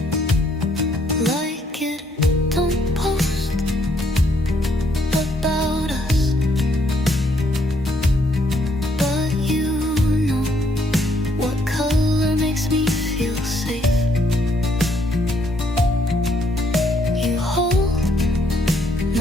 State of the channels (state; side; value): normal; both; correlation 0.70